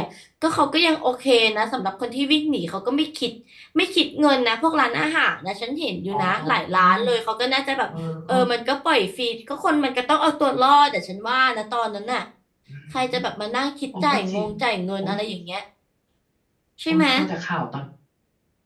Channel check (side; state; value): both; identical; correlation 1.00